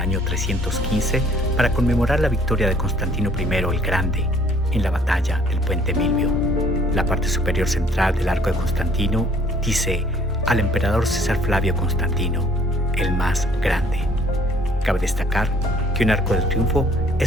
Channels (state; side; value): normal; both; correlation 0.60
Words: 315 para conmemorar la victoria de Constantino I el Grande en la batalla del Puente Milvio. La parte superior central del Arco de Constantino dice al emperador César Flavio Constantino, el más grande. Cabe destacar que un Arco del Triunfo